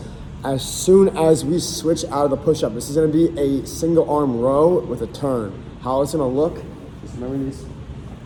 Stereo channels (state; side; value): identical; both; correlation 1.00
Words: As soon as we switch out of the push-up, this is gonna be a single arm row with a turn. How it's gonna look, just remember these.